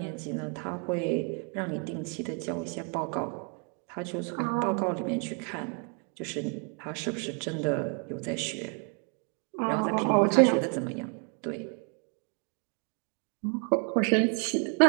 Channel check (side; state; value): left; quieter; 39.6 dB